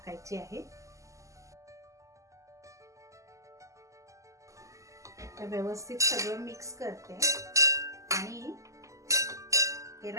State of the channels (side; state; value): left; late; 0.16 ms